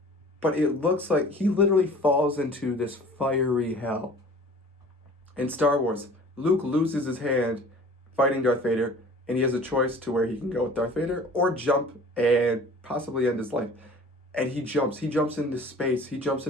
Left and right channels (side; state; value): both; normal; correlation 0.46